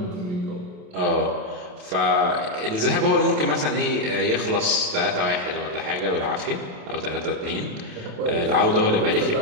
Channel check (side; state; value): left; late; 28 ms